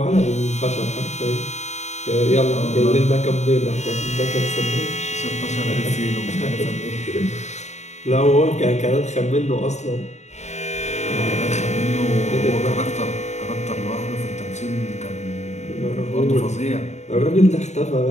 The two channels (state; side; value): late; right; 0.33 ms